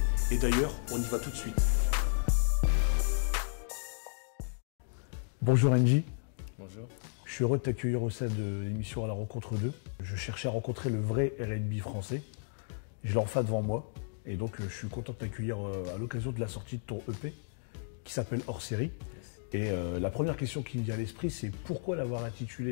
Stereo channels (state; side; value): silent; right; digital silence